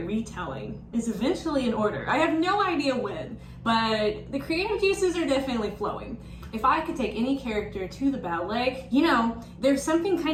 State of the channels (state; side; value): identical; both; correlation 1.00